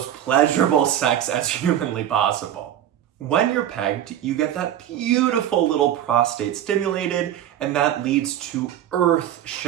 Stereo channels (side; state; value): left; quieter; 11.1 dB